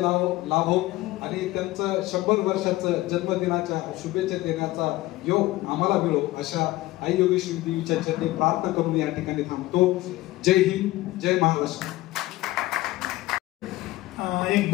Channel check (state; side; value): quieter; right; 18.0 dB